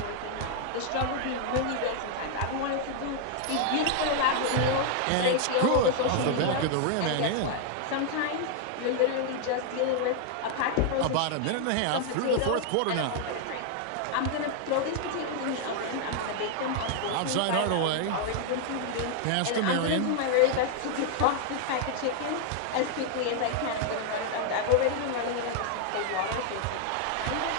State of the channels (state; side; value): different; both; correlation 0.00